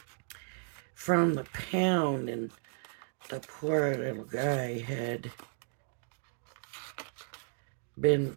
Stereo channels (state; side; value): silent; left; digital silence